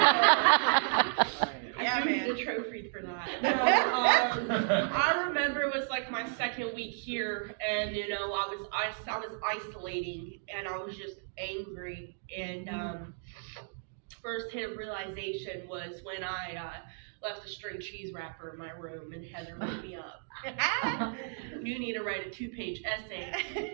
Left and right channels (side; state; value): left; silent; digital silence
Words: I do need a trophy for that. I remember it was like my second week here, and you know I was isolating, and I was just angry. And first hit of realization was when I left a string cheese wrapper in my room, and Heather woke me up. You need to write a 2-page essay.